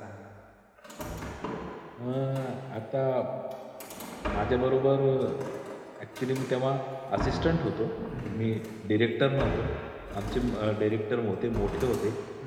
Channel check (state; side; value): identical; both; correlation 1.00